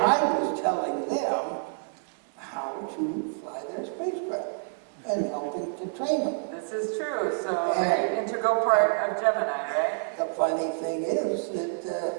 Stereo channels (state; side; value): silent; left; 59 dB below the other